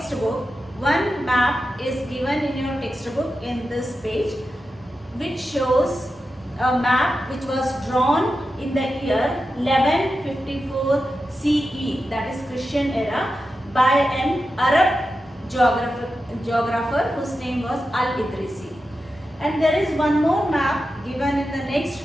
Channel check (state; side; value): normal; both; correlation 0.90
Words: one map is given in your textbook in this page, which shows a map which was drawn in the year 1154 CE, that is Christian era, by an Arab geographer whose name was Al-Idrisi. And there is one more map given in the